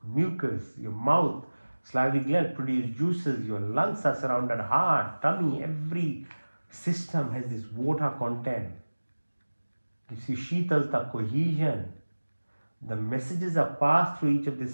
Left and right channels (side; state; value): both; inverted; correlation -1.00